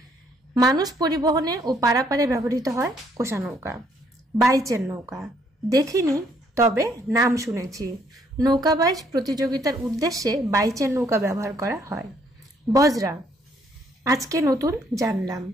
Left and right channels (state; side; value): normal; both; correlation 0.67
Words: মানুষ পরিবহনে ও পারাপারে ব্যবহৃত হয় কোষা নৌকা। বাইচের নৌকা, দেখিনি তবে নাম শুনেছি, নৌকা বাইচ প্রতিযোগিতার উদ্দেশ্যে বাইচের নৌকা ব্যবহার করা হয়। বজরা, আজকে নতুন জানলাম,